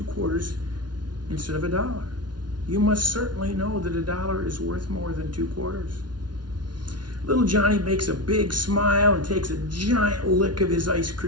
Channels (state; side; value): late; left; 0.70 ms